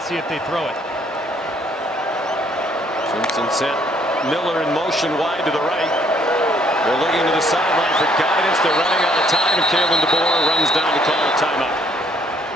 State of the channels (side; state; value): both; normal; correlation 0.65